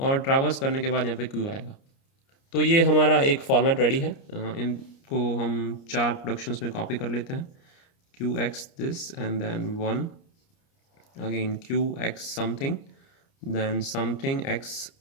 ट्रैवर्स करने के बाद यहाँ पे Q आएगा। तो ये हमारा एक फॉर्मेट रेडी है। इनको हम 4 प्रोडक्शंस में कॉपी कर लेते हैं, QX this and then 1, again QX something, then something X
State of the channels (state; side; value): late; right; 29 ms